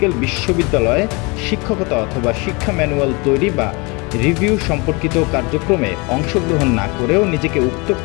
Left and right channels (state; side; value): quieter; right; 28.3 dB